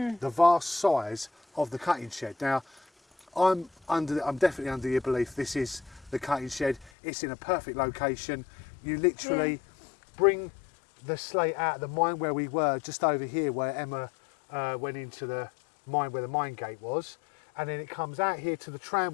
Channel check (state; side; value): drops out; right; at 6.9 s